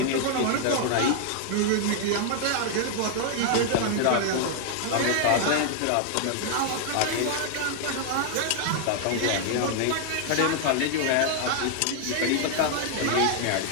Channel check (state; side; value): different; both; correlation 0.00